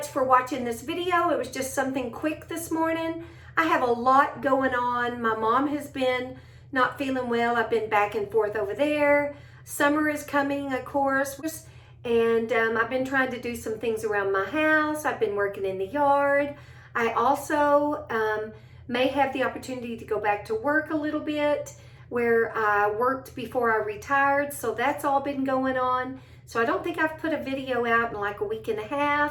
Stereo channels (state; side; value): identical; both; correlation 1.00